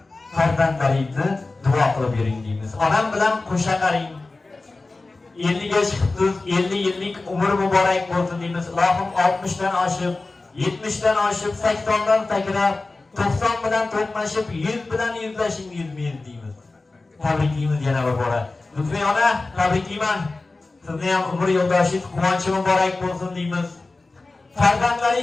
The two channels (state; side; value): quieter; right; 3.4 dB